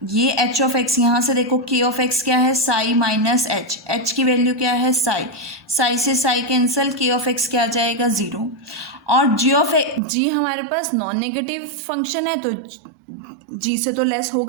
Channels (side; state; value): left; drops out; at 10.0 s